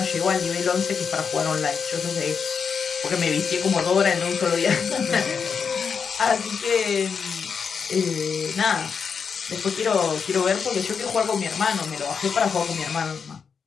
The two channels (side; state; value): right; quieter; 6.2 dB